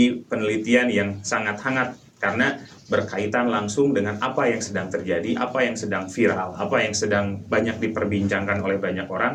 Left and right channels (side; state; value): both; identical; correlation 1.00